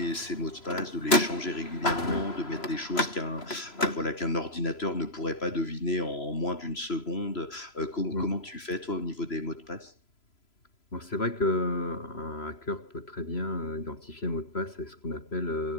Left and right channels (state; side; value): late; right; 3.0 ms